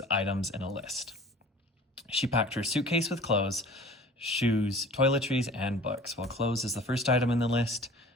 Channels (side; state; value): both; normal; correlation 0.44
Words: items in a list. She packed her suitcase with clothes, shoes, toiletries, and books. Well, clothes is the first item in the list.